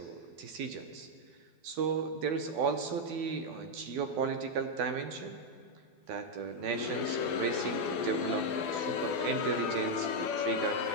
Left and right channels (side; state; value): left; late; 12 ms